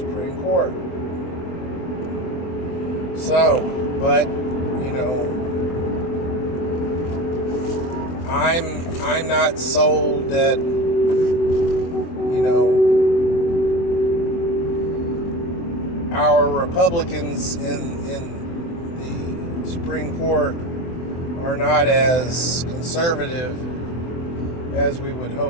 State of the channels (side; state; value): right; late; 24 ms